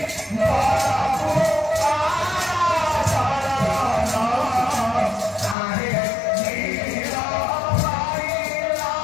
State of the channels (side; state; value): right; drops out; at 5.6 s